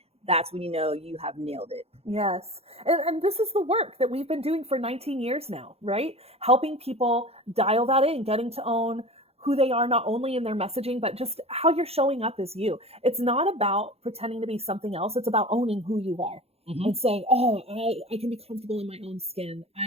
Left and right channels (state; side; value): late; left; 0.29 ms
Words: That's when you know you have nailed it. Yes. And this is the work that we've been doing for 19 years now, right? Helping people dial that in, getting to own who they are, not only in their messaging, but just how you're showing up as you. It's not about pretending to be something else. It's about owning who you are and saying, oh, I can be comfortable in my own skin.